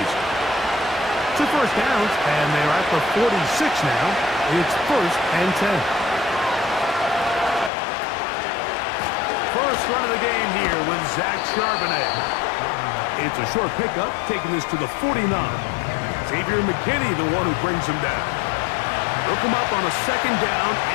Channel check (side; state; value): right; drops out; at 7.7 s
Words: 2 first downs, and they're at the 46 now. It's 1st and 10. First run of the game here with Zach Charbonnet. It's a short pickup, taking this to the 49. Xavier McKinney, the one who brings him down. Look him up on a 2nd down